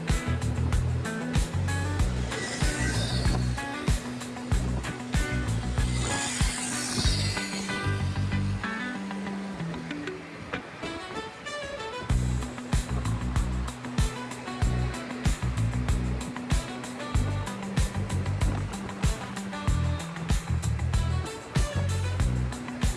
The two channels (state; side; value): identical; both; correlation 1.00